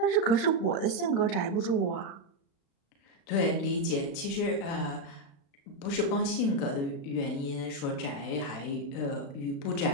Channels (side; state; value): right; late; 36 ms